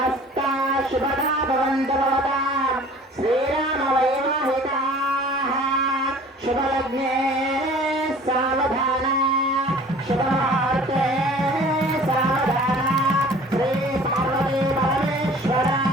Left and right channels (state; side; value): normal; both; correlation 0.47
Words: శ్రీరామ వైవాహికా శుభలగ్నే సావధాన శుభముహూర్తే సావధాన శ్రీ పార్వతీ పరమేశ్వర